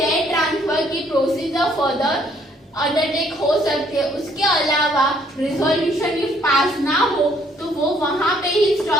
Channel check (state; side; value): normal; both; correlation 0.65